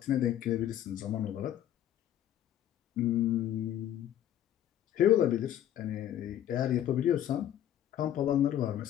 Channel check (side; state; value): right; quieter; 11.2 dB